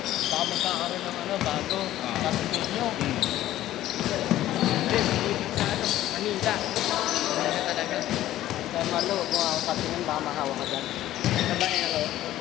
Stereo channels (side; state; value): right; quieter; 13.9 dB